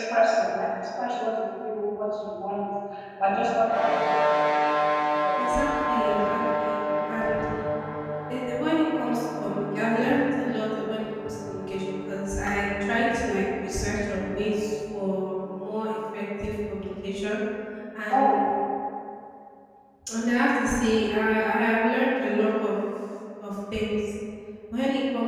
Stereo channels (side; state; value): both; identical; correlation 1.00